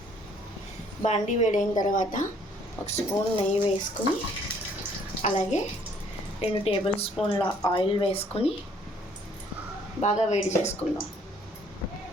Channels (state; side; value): normal; both; correlation 0.61